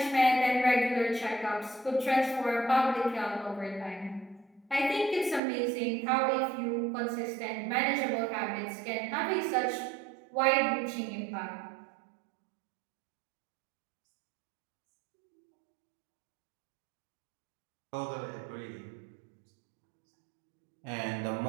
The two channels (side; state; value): left; drops out; at 5.4 s